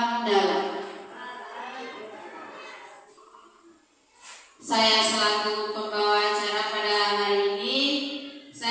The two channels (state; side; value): identical; both; correlation 1.00